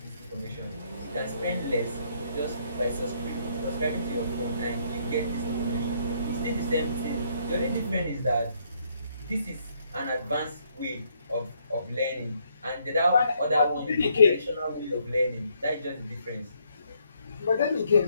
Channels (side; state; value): both; inverted; correlation -0.71